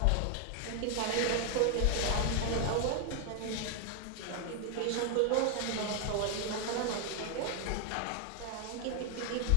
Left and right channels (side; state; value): both; different; correlation 0.01